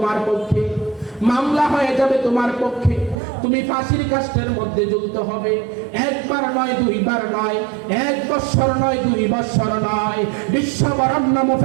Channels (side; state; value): left; drops out; at 3.2 s